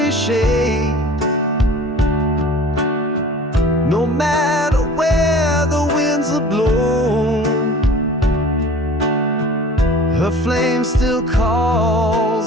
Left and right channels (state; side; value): normal; both; correlation 0.43